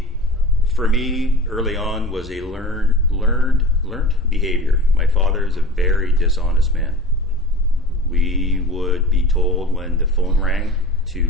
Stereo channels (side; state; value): both; normal; correlation 0.37